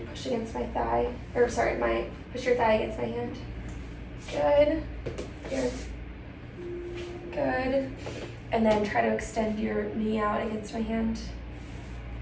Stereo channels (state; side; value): identical; both; correlation 1.00